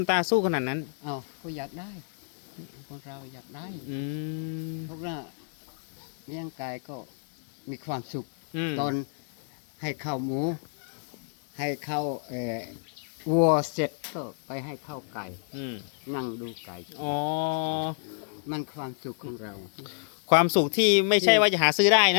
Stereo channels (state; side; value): silent; right; digital silence